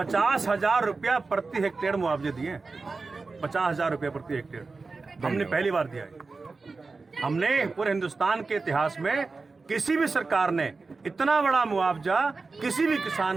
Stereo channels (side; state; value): left; quieter; 4.0 dB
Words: रुपया प्रति हेक्टेयर मुआवजे दिए। 50,000 रुपया प्रति हेक्टेयर हमने पहली बार दिया है। हमने पूरे हिंदुस्तान के इतिहास में किसी भी सरकार ने इतना बड़ा मुआवजा किसी भी किसान